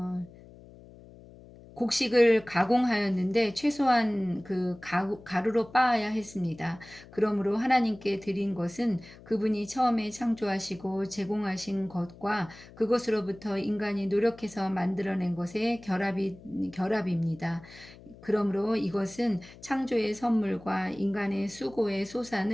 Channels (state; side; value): noise; left; hum, 20 dB below the sound